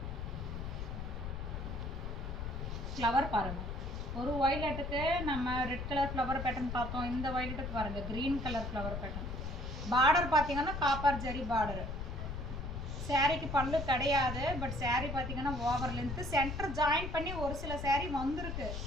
ஃப்ளவர் பாருங்கள். ஒரு வயலட்டுக்கு நம்ம ரெட் கலர் ஃப்ளவர் பேட்டர்ன் பார்த்தோம். இந்த வயலட்டுக்கு பாருங்கள் green colour flower pattern. Border பார்த்தீங்கன்னா காப்பர் ஜரி பார்டரு. சேரீக்கு பல்லு கிடையாது, பட் சேரீ பார்த்தீங்கன்னா ஓவர் லென்த்து. சென்டர் ஜாயின் பண்ணி ஒரு சில சேரீ வந்திருக்கு.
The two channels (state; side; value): noise; left; rumble, 5 dB below the sound